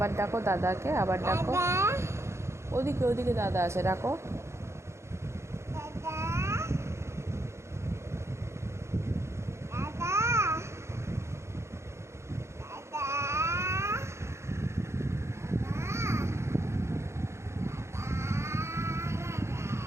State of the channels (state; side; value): late; left; 0.13 ms